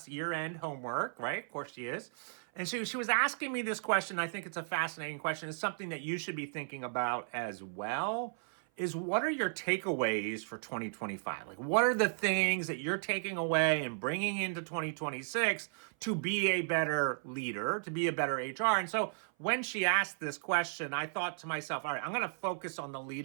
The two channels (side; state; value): left; silent; 55 dB below the other